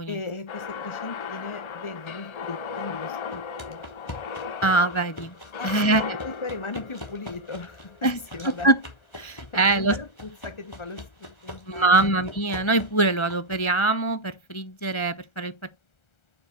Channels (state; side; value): late; right; 1.3 ms